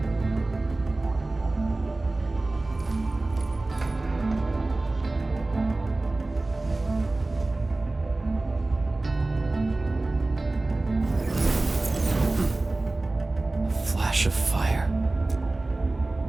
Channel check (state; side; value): quieter; left; 3.0 dB